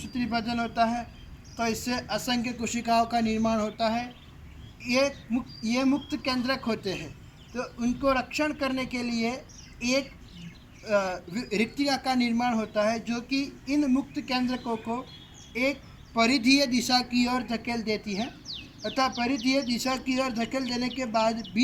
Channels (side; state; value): both; identical; correlation 1.00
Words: विभाजन होता है, तो इससे असंख्य कोशिकाओं का निर्माण होता है। ये मुक्त केंद्रक होते हैं, तो उनको रक्षण करने के लिए एक रिक्तिका का निर्माण होता है, जो कि इन मुक्त केंद्रकों को एक परिधीय दिशा की ओर धकेल देती है तथा परिधीय दिशा की ओर धकेल देने के बाद